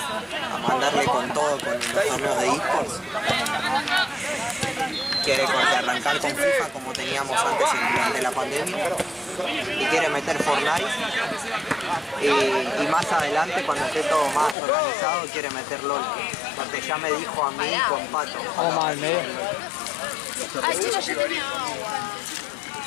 mandarle con todo con los torneos de eSports. Quiere arrancar con FIFA como teníamos antes durante la pandemia. Y quiere meter Fortnite. Y más adelante, cuando esté todo más organizado, quiere meter LOL. Porque ya me dijo a mí con Pato. Vamos más al medio. Ay, chicos, yo tenía agua.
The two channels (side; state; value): right; drops out; at 14.6 s